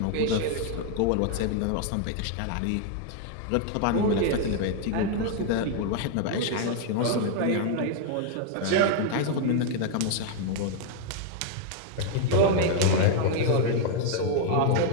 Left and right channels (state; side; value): different; both; correlation 0.00